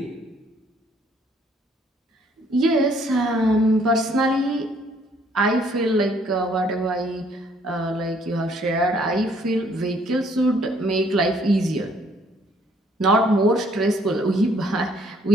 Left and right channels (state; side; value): normal; both; correlation 0.64